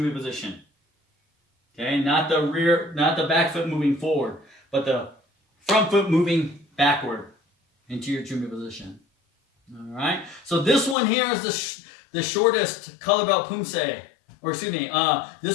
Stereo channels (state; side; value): drops out; right; at 11.0 s